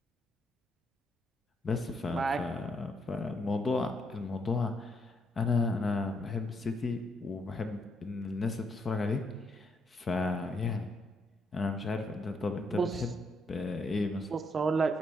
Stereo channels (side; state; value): both; normal; correlation 0.75